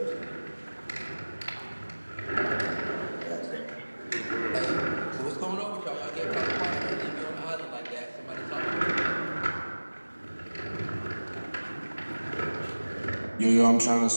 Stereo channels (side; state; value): both; inverted; correlation -1.00